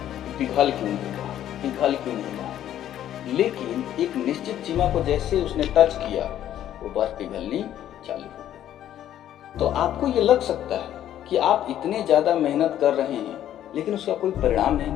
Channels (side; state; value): right; quieter; 11.5 dB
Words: पिघल क्यों नहीं रहा, पिघल क्यों नहीं रहा। लेकिन एक निश्चित सीमा को जैसे उसने टच किया, वो बर्फ पिघलनी चालू हो गई। तो आपको ये लग सकता है कि आप इतने ज़्यादा मेहनत कर रहे हैं, लेकिन उसका कोई परिणाम नहीं